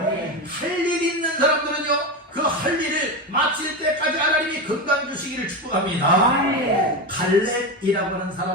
할 일 있는 사람들은요, 그 할 일을 마칠 때까지 하나님이 건강 주시기를 축복합니다. 갈렙이라고 하는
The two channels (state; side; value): normal; both; correlation 0.18